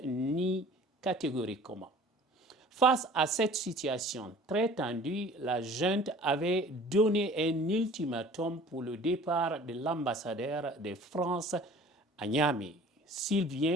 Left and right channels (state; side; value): normal; both; correlation 0.47